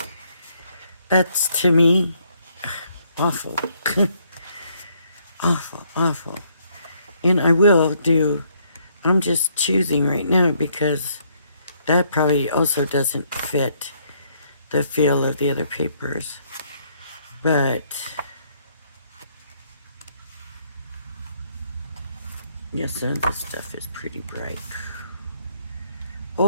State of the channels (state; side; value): inverted; both; correlation -0.69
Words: That's, to me, awful. Awful, awful. And I will do, I'm just choosing right now because that probably also doesn't fit the feel of the other papers. But, yes, some of this stuff is pretty bright.